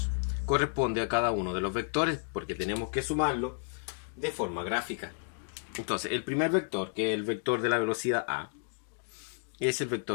corresponden a cada uno de los vectores porque tenemos que sumarlo de forma gráfica. Entonces, el primer vector, que es el vector de la velocidad A, es el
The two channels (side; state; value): right; silent; digital silence